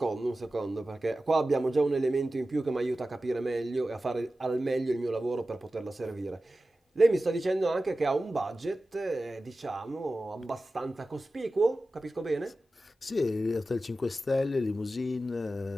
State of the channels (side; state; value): both; normal; correlation 0.95